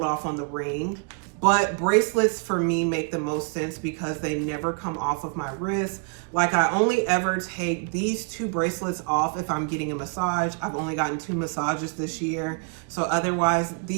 off on the ring. But bracelets for me make the most sense because they never come off of my wrist. Like I only ever take these 2 bracelets off if I'm getting a massage. I've only gotten 2 massages this year. So otherwise,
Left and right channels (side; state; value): left; quieter; 38.2 dB